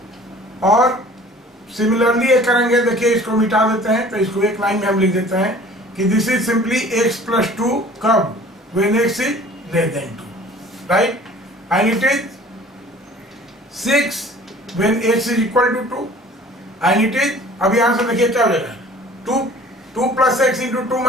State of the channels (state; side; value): normal; both; correlation 0.48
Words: और सिमिलरली ये करेंगे, देखिए इसको मिटा देते हैं, तो इसको एक लाइन में हम लिख देते हैं कि this is simply x plus 2 कब, when x is less than 2, right. And it is 6 when x is equal to 2, and it is, अब यहां से देखिए क्या हो जाएगा, 2 plus x into 2